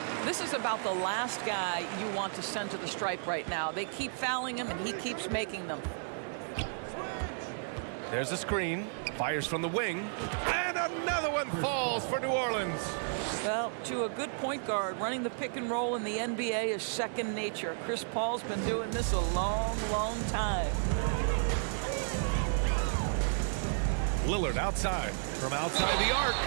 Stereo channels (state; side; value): silent; left; 56 dB below the other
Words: This is about the last guy you want to send to the stripe right now. They keep fouling him, and he keeps making them. There's a screen. Fires from the wing. And another one falls for New Orleans. Well, to a good point guard, running the pick and roll in the NBA is second nature. Chris Paul's been doing this a long, long time. Lillard outside. From outside the arc.